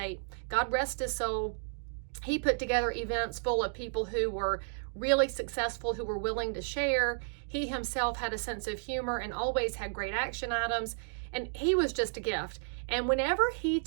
God rest his soul. He put together events full of people who were really successful, who were willing to share. He himself had a sense of humor and always had great action items. And he was just a gift. And whenever he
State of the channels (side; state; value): left; silent; digital silence